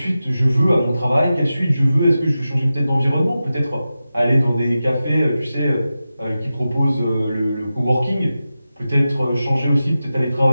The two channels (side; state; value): both; inverted; correlation -0.93